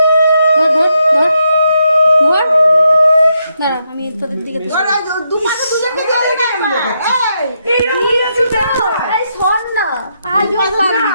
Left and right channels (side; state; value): both; inverted; correlation -0.80